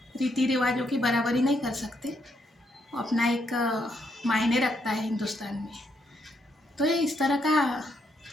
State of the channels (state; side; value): normal; both; correlation 0.77